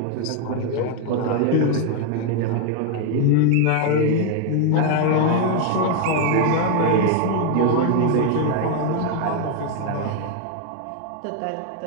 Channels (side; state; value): both; different; correlation 0.00